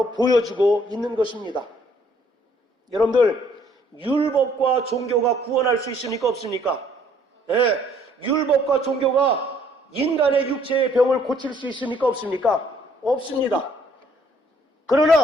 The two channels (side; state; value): both; normal; correlation 0.63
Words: 보여주고 있는 것입니다. 여러분들, 율법과 종교가 구원할 수 있습니까? 없습니까? 예, 율법과 종교가 인간의 육체의 병을 고칠 수 있습니까? 없습니까? 없습니다.